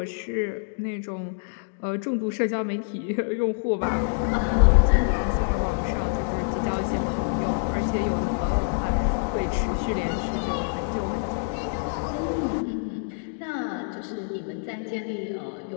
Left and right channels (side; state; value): right; silent; digital silence